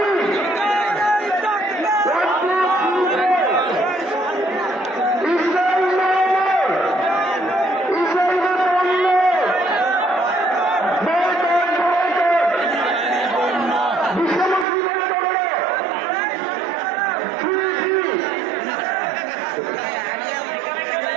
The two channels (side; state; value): left; drops out; at 14.7 s